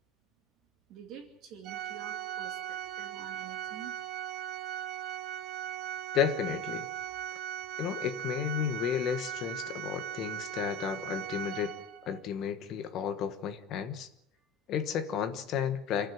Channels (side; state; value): right; quieter; 3.3 dB